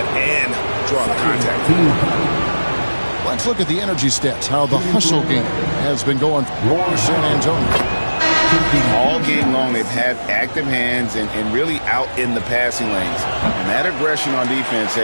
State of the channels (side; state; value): both; inverted; correlation -1.00